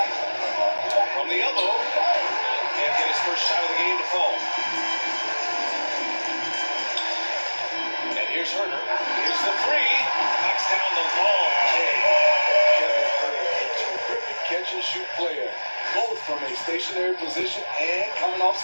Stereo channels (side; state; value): both; inverted; correlation -1.00